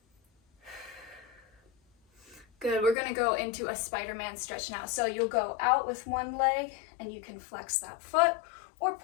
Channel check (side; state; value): right; drops out; at 3.0 s